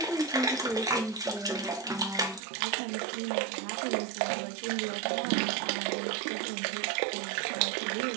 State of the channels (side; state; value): left; drops out; at 2.4 s